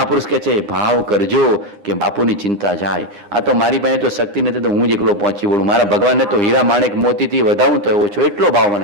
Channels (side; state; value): left; late; 9.8 ms